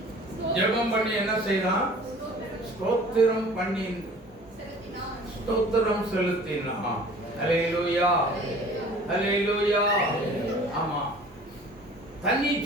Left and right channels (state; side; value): normal; both; correlation 0.47